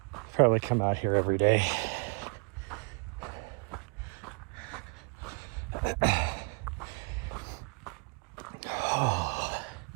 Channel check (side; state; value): left; quieter; 35.1 dB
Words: probably come out here every day.